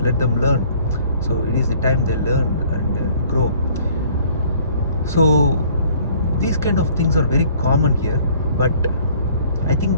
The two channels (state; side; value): inverted; both; correlation -0.56